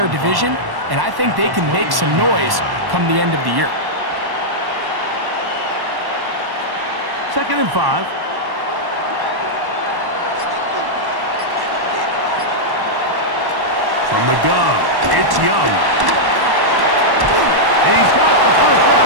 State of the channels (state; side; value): late; left; 1.1 ms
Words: division, and I think they can make some noise come the end of the year. 2nd and 5. From the gun, it's Young. He's got the